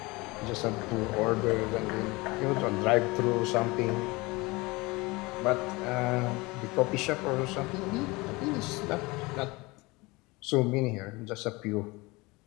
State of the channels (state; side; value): quieter; right; 23.7 dB